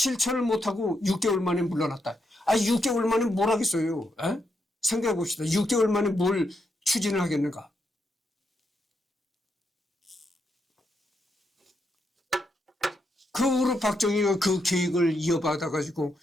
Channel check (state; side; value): normal; both; correlation 0.81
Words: 못하고 6개월 만에 물러났다. 6개월 만에 뭘 하겠어요? 에? 생각해 봅시다. 6개월 만에 뭘 추진을 하겠는가? 그 후로 박정희가 그 계획을 이어받아가지고